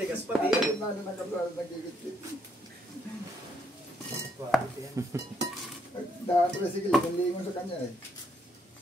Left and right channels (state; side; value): normal; both; correlation 0.73